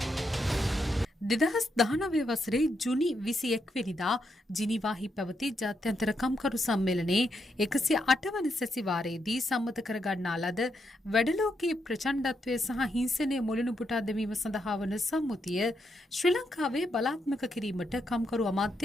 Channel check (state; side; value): normal; both; correlation 0.80